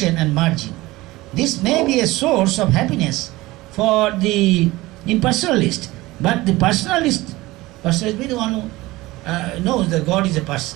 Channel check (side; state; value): left; quieter; 19.5 dB